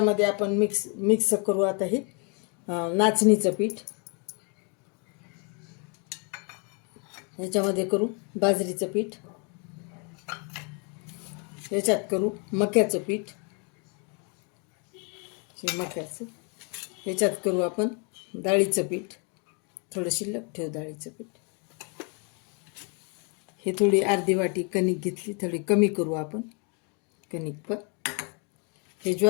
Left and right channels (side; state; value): right; quieter; 36.0 dB